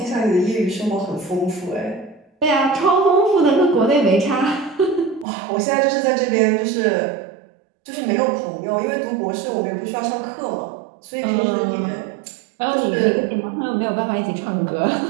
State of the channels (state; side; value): drops out; left; at 5.2 s